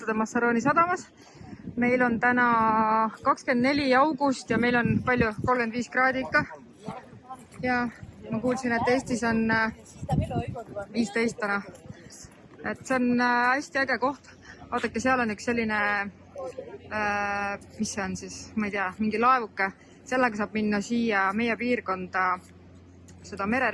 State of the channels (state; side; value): identical; both; correlation 1.00